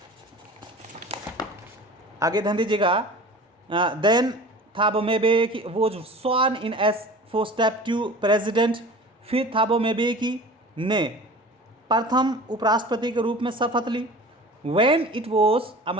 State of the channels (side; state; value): both; normal; correlation 0.40